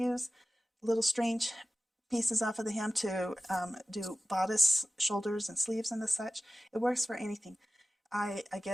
little strange pieces off of the hem to do bodice, shoulders, and sleeves and the such. It works for anything. I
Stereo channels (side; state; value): both; normal; correlation 0.95